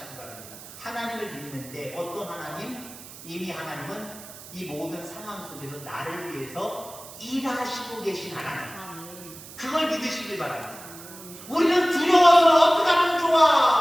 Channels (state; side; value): noise; right; hiss, 16 dB below the sound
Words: 바랍니다. 하나님을 믿는데 어떤 하나님? 이미 하나님은 이 모든 상황 속에서 나를 위해서 일하시고 계신 하나님. 그걸 믿으시길 바랍니다. 우리는 두려워서 어떻게 하면